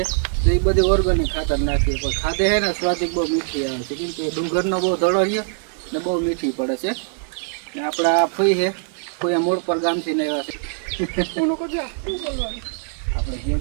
તો એ બધી ઓર્ગેનિક ખાતર નાખીએ, પણ ખાધે છે ને સ્વાદિક બહુ મીઠી આવે છે, કેમ કે ડુંગરનો બહુ ધડો છે ને બહુ મીઠી પડે છે. ને આપણા ફઈ છે, કોઈ મોડ પર ગામથી ને આવ્યા છે. આપણે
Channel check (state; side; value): silent; left; 64 dB below the other